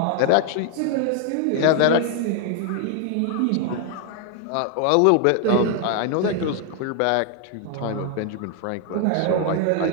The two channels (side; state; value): both; different; correlation 0.00